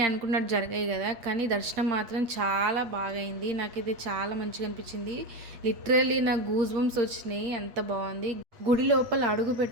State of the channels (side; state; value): left; late; 8.3 ms